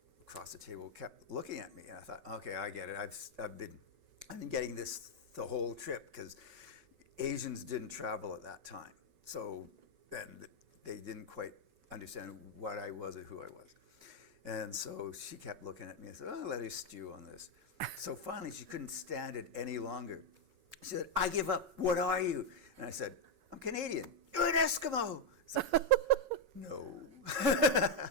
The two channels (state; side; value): late; left; 5.3 ms